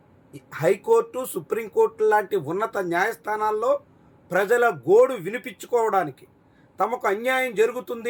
హైకోర్టు, సుప్రీంకోర్టు లాంటి ఉన్నత న్యాయస్థానాల్లో ప్రజల గోడు వినిపించుకోవడానికి, తమకు అన్యాయం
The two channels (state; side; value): identical; both; correlation 1.00